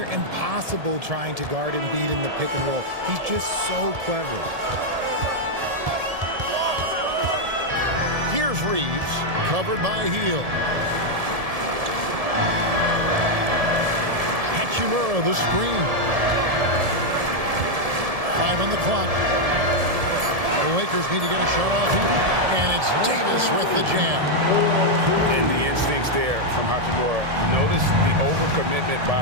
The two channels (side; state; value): left; late; 1.7 ms